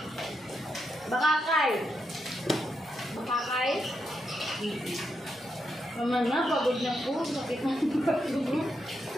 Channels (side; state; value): both; normal; correlation 0.82